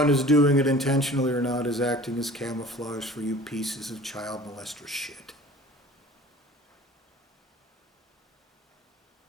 is doing it intentionally or not, is acting as camouflage for you pieces of child molester shit.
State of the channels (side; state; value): both; normal; correlation 0.45